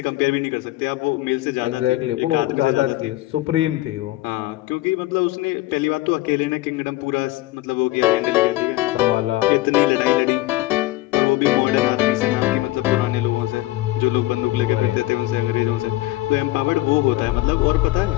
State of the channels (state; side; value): quieter; right; 17.9 dB